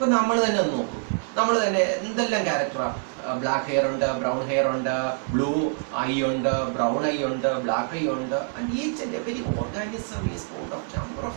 നമ്മൾ തന്നെ ഒന്ന് നോക്കും, നമ്മൾ തന്നെ എന്തെല്ലാം ക്യാരക്ടറാണ്. Black hair ഉണ്ട്, ബ്രൗൺ ഹെയർ ഉണ്ട്, ബ്ലൂ ഐ ഉണ്ട്, ബ്രൗൺ ഐ ഉണ്ട്, ബ്ലാക്ക് ഐ ഉണ്ട്. And each and every organism is Ford of number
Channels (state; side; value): silent; left; 56 dB below the other